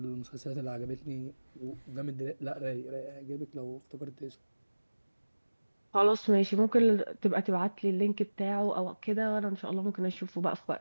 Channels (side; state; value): both; inverted; correlation -1.00